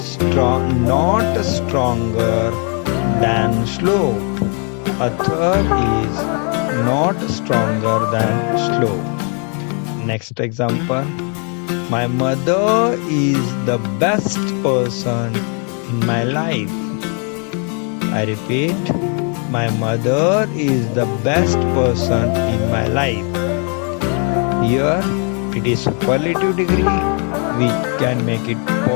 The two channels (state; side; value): quieter; right; 39.5 dB